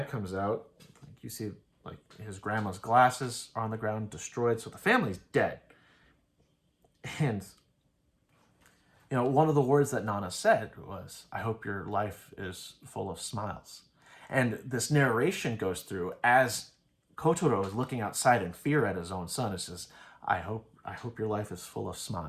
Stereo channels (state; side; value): identical; both; correlation 1.00